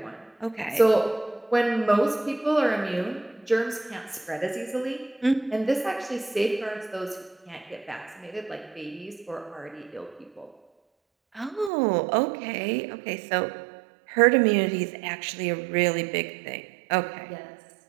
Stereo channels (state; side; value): drops out; left; at 11.7 s